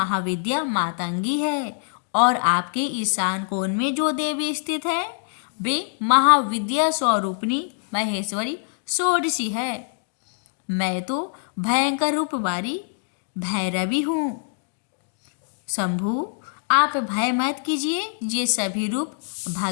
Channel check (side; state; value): right; silent; digital silence